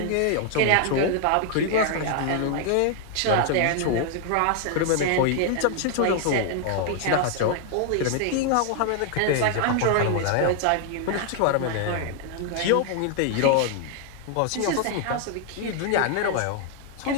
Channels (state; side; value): different; both; correlation 0.00